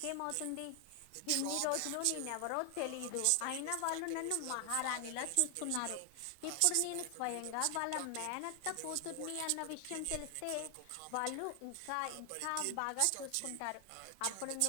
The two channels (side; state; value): both; different; correlation 0.00